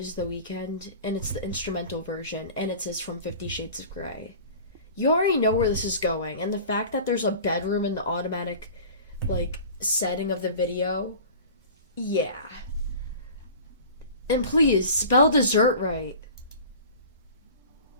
The Weeknd, and it's the instrumental version, and it says from 50 Shades of Grey. You already know where this is going, and the fact that there's a bedroom in the automatic, setting of the video, yeah. And please, spell dessert right.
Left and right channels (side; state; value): both; inverted; correlation -0.40